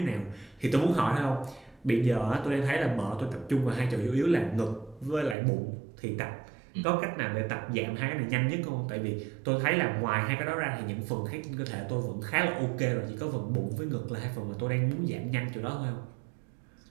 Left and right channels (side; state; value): left; drops out; at 5.4 s